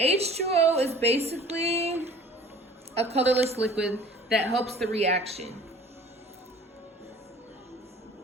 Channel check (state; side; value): normal; both; correlation 0.48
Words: is basically a colorless liquid that helps the reaction